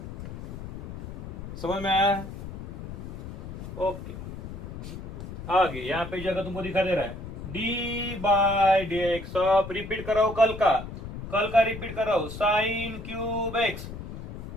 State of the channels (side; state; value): left; noise; rumble, 10 dB below the sound